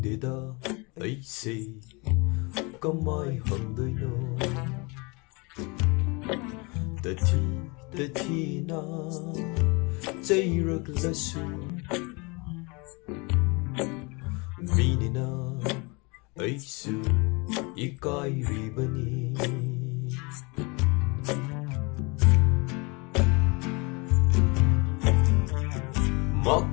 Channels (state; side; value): quieter; right; 28.7 dB